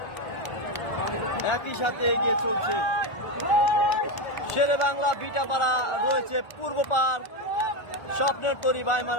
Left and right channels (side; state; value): right; late; 1.4 ms